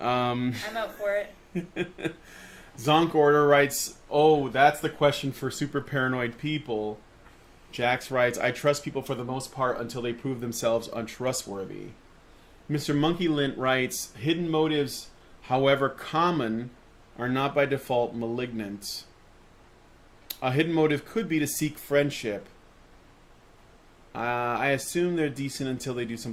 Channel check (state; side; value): identical; both; correlation 1.00